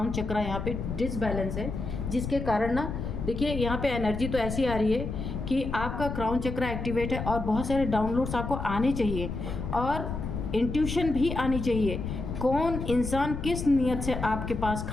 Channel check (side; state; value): left; noise; rumble, 5 dB below the sound